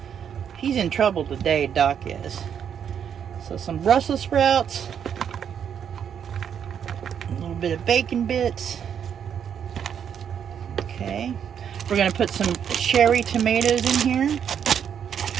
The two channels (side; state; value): left; quieter; 8.3 dB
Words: He's in trouble today, Doc is. So some Brussels sprouts, a little bit of bacon bits. Okay, we're gonna put some cherry tomatoes in here.